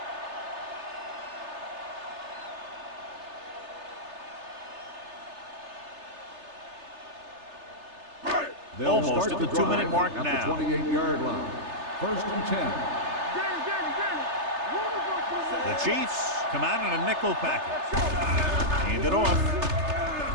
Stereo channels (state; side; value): late; left; 3.3 ms